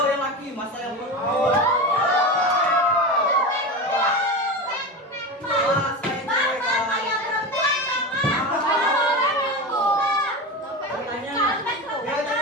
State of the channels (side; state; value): both; normal; correlation 0.23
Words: yang laki, masa yang belum.